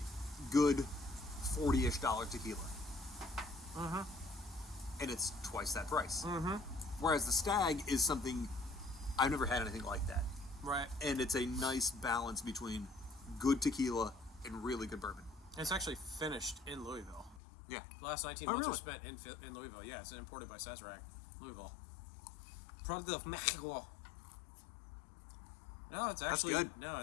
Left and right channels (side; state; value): right; drops out; at 17.4 s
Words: good $40-ish tequila. And it's twice that price. Whereas the Stagg is something, I've never had anything like that. Right. And it's a nice balance between good tequila and really good bourbon. It's actually finished in Louisville. Yeah. The last 19 months really? were spent in Louisville. Yeah, it's imported by Sazerac, Louisville. Product of Mexico. No, it's actually good. no,